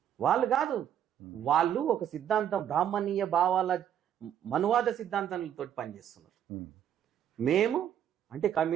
వాళ్ళు కాదు, వాళ్ళు ఒక సిద్ధాంతం బ్రాహ్మణీయ భావాల మనువాద సిద్ధాంతాలతో పనిచేస్తున్నారు. మేము అంటే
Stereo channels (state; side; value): quieter; left; 9.9 dB